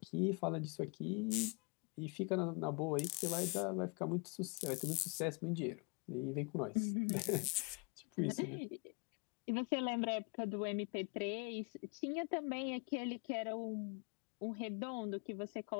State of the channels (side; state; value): right; quieter; 32.6 dB